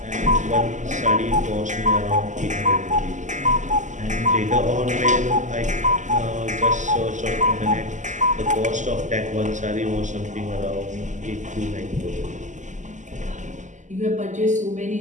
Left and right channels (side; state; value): left; late; 0.35 ms